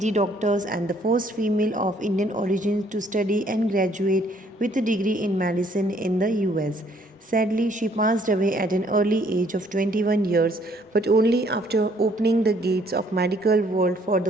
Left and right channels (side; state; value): both; normal; correlation 0.64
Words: doctors and the first female of Indian origin to study and graduate with a degree in medicine in the US. Sadly, she passed away at an early age of 21 years, but only after opening the gates of medical world for the